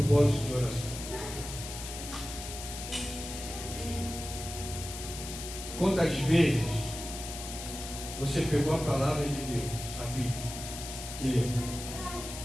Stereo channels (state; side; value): noise; left; hiss, 9 dB below the sound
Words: de oração? Quantas vezes você pegou a palavra de Deus, a Bíblia, e leu?